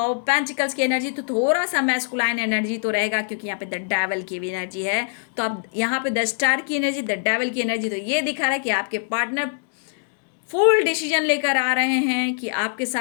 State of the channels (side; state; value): right; silent; digital silence